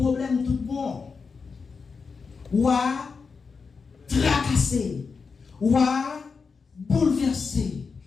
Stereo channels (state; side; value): quieter; right; 5.1 dB